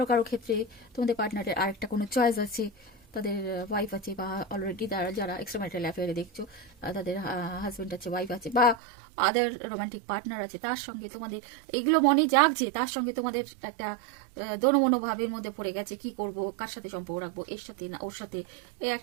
কারো ক্ষেত্রে তোমাদের পার্টনারের আরেকটা কোনো চয়েস আছে, তাদের ওয়াইফ আছে, বা অলরেডি তারা যারা এক্সট্রা ম্যারিটাল অ্যাফেয়ারে দেখছো তাদের হাজব্যান্ড আছে, ওয়াইফ আছে, বা আদার রোমান্টিক পার্টনার আছে, তার সঙ্গে তোমাদের এইগুলো মনে জাগছে, তার সঙ্গে তোমাদের একটা দোনোমনো ভাবের মধ্যে পড়ে গেছে, কি করব, কার সাথে সম্পর্ক রাখবো, এর সাথে না ওর সাথে, এই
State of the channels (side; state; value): left; drops out; at 8.8 s